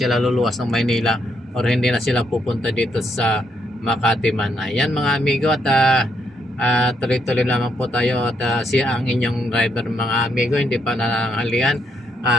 luluwas ng Maynila or hindi na sila pupunta dito sa Makati man. Ayan mga amigo, at tuloy-tuloy lamang po tayo, at siya ang inyong driver mga amigo, hindi pa nananghalian.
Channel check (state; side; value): normal; both; correlation 0.75